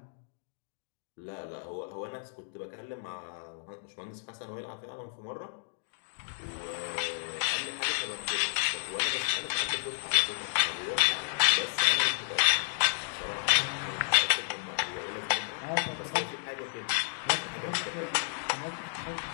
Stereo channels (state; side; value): silent; right; digital silence